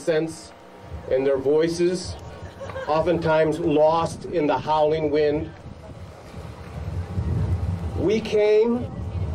and their voices, oftentimes lost in the howling wind. We came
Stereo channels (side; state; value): both; identical; correlation 1.00